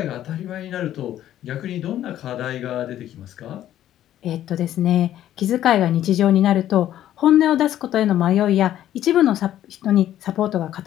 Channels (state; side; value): quieter; right; 12.1 dB